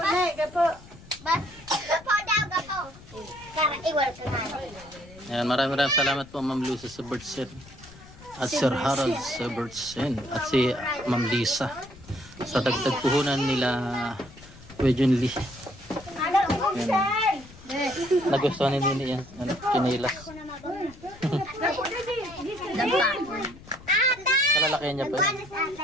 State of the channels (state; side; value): noise; left; rumble, 20 dB below the sound